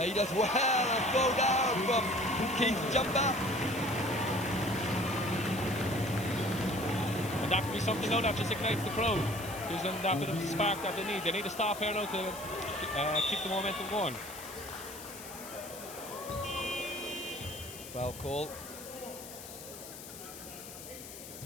he does well, and throw down from Keith's jumper. And that could be something now that just ignites the crowd. Gives them that bit of spark that they need. They need to stop here now to keep the momentum going. Foul call.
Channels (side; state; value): left; noise; hiss, 13 dB below the sound